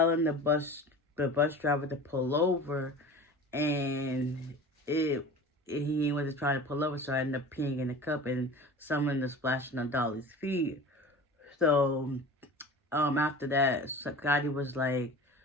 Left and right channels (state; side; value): normal; both; correlation 0.37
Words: the bus driver to pull over, and he wasn't trying to pull over, so I ended up peeing in the cup, and someone was splashing on Dolly's feet. So, after that, Scotty was like,